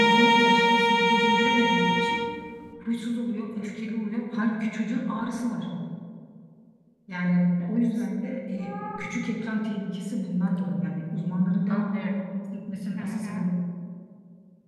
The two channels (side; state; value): both; identical; correlation 1.00